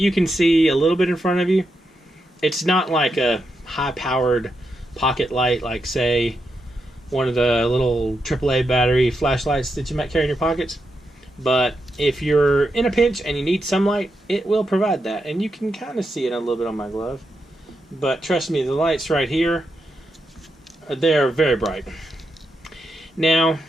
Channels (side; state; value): both; normal; correlation 0.85